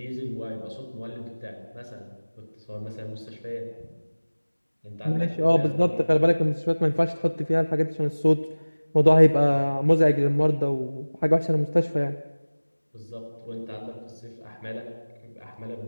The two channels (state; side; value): inverted; both; correlation -1.00